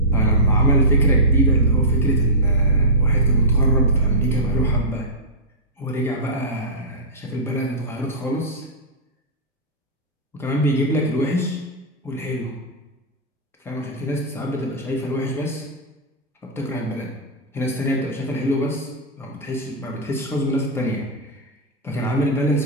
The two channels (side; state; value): both; normal; correlation -0.13